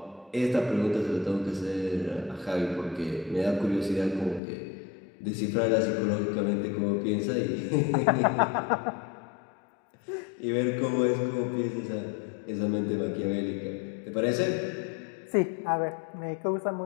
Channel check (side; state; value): right; drops out; at 4.4 s